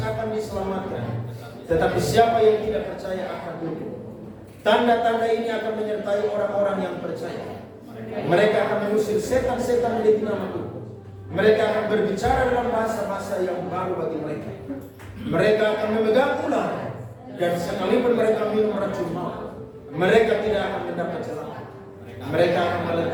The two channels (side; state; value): both; identical; correlation 1.00